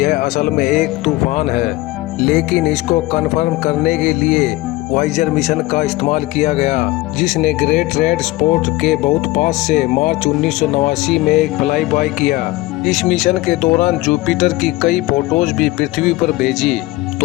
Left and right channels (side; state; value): right; quieter; 19.3 dB